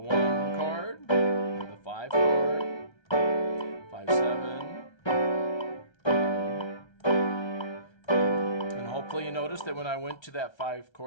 chord, and the 5 chord, 5-7. Hopefully you noticed that when I went to that 5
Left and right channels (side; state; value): right; late; 1.3 ms